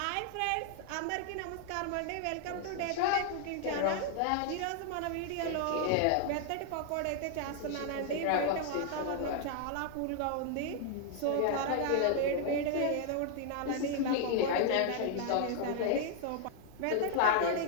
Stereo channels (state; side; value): different; both; correlation 0.00